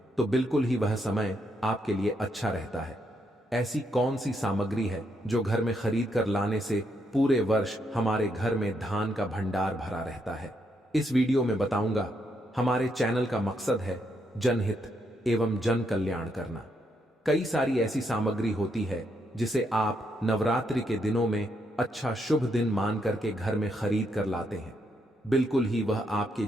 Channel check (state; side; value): normal; both; correlation 0.77